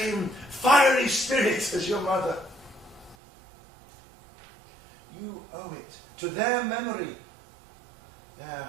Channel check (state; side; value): drops out; left; at 3.2 s